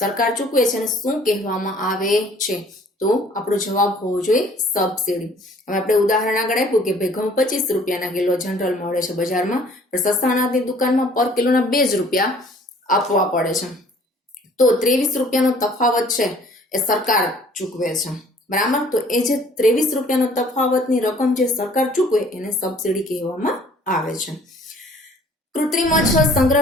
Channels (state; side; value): normal; both; correlation 0.55